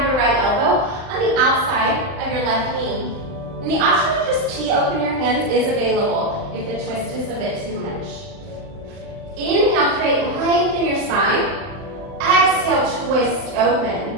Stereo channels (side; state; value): left; late; 39 ms